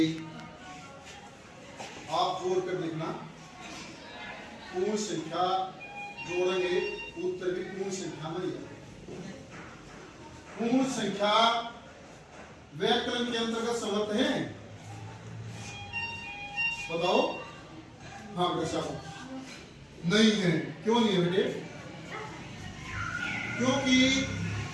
आप जोड़ कर देखना, पूर्ण संख्या जोड़ेंगे उत्तर भी पूर्ण संख्या में ही आएगा। पूर्ण संख्या व्याकरण के अंतर्गत समर्थ है, बताओ। हाँ बेटा नहीं है, क्यों नहीं है बेटे? क्योंकि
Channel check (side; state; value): both; identical; correlation 1.00